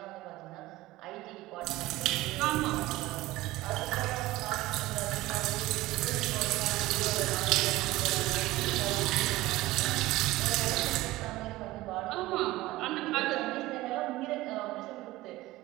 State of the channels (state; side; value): quieter; left; 18.1 dB